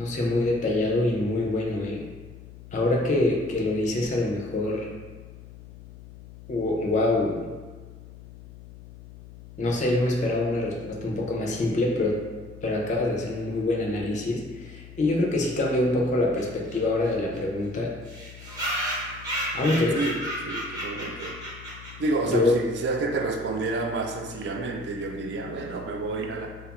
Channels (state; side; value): noise; left; hum, 17 dB below the sound